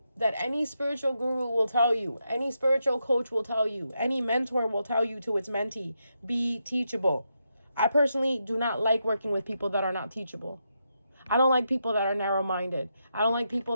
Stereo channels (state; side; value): inverted; both; correlation -0.83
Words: that any spiritual guru will tell you, any spiritual coach will tell you, any mentor will tell you to its mentee, be teachable. I personally do not like working with people that are not teachable. I don't like people that are narrow-minded. I don't like